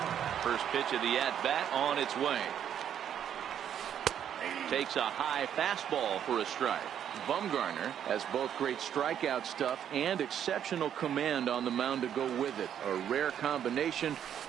First pitch of the at-bat on its way. Takes a high fastball for a strike. Bumgarner has both great strikeout stuff and exceptional command on the mound to go with it. A rare combination,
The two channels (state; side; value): quieter; left; 9.4 dB